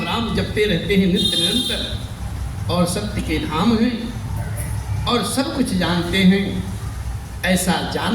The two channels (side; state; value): both; identical; correlation 1.00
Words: राम जपते रहते हैं नित्य निरंतर, और सत्य के धाम हैं और सब कुछ जानते हैं। ऐसा